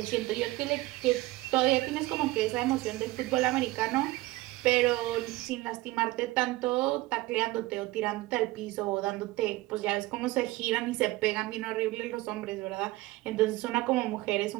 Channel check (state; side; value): quieter; left; 19.2 dB